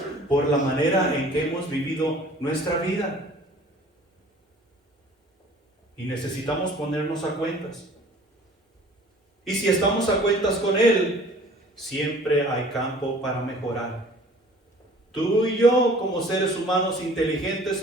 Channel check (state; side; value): normal; both; correlation 0.50